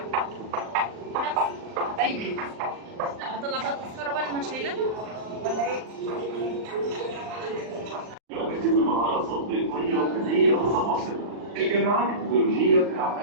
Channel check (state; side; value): late; left; 39 ms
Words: حبايبي هطلع بقى التذكره بقى، انا مش شايلاها ولا ايه؟ يتم مهارات تطبيقية وفنية متواصلة. الجامعات التكنولوجية